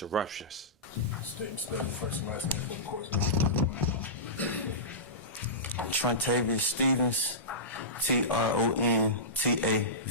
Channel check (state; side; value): normal; both; correlation -0.19